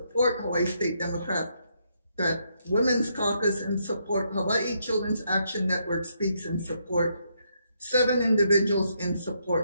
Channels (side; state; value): both; inverted; correlation -0.76